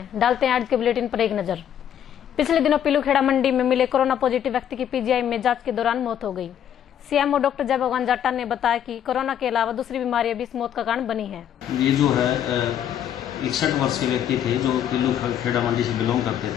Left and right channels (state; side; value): quieter; right; 9.8 dB